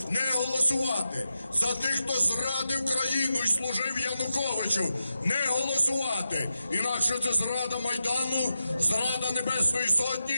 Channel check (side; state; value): both; inverted; correlation -0.90